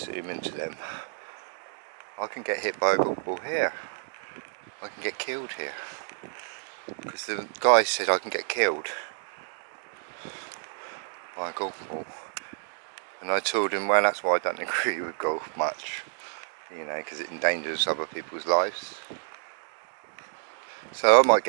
zoom into them. I can get hit by a golf ball here. I can get killed here. Because the guy said I can get killed by a golf ball. And I told him, well, that's why I don't agree with golf much. You know, because it endangers other people's lives. So I might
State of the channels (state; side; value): silent; left; digital silence